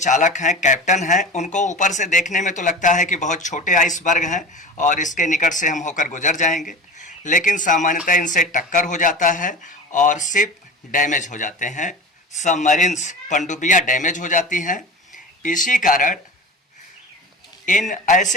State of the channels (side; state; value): both; normal; correlation 0.33